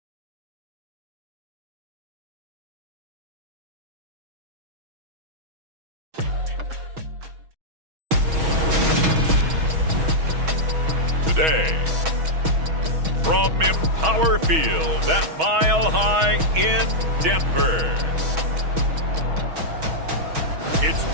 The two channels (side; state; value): left; late; 6.2 ms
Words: Today, from Empower Field at Mile High in Denver,